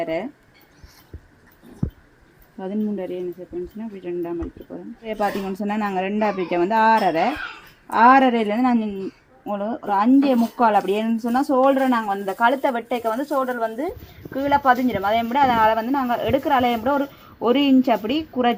என்ன செகண்ட்ஸ்னால் அப்படி 2ஆக மடிக்க போகிறோம். இதே பார்த்தீங்கன்னு சொன்னால் நாங்கள் 2ஆக பிரிக்க வந்து 6.5 நான் ஒரு 5.25 அப்படி என்னன்னு சொன்னால் ஷோல்டரை நாங்கள் வந்து இந்த கழுத்தை வெட்டைக்க வந்து ஷோல்டர் வந்து கீழே பதிஞ்சிடும். அதே மாதிரி அதனால் வந்து நாங்கள் எடுக்கிற அலையை கூட ஒரு இன்ச் அப்படி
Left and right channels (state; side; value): identical; both; correlation 1.00